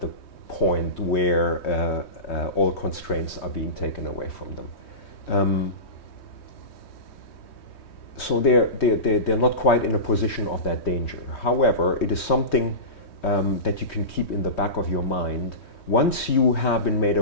the point where all constraints are being taken away from them. So they're not quite in a position of that danger. However, it is something that you can keep in the back of your mind. Once you have been made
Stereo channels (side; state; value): right; late; 3.2 ms